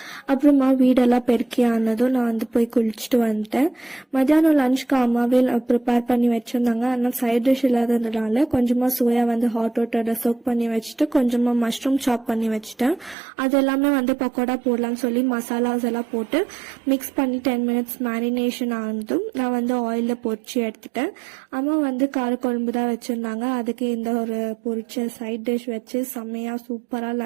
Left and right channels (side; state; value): left; drops out; at 13.2 s